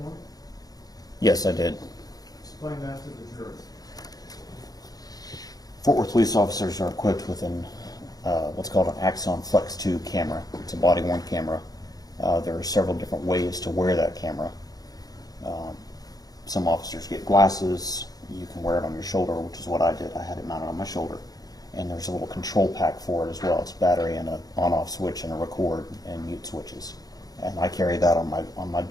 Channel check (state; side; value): late; right; 0.18 ms